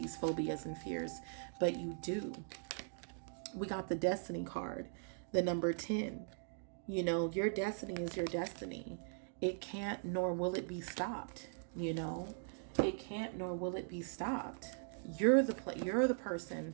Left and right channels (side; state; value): left; silent; digital silence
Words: phobias and fears, but you do. We got the Destiny card, the number 10. You know, your destiny is your destiny. It can't nor will it be stopped. You know, it can't nor will it be stopped. You're the